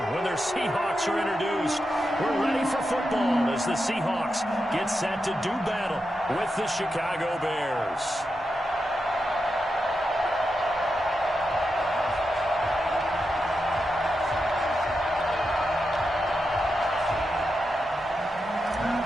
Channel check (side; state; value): both; normal; correlation 0.87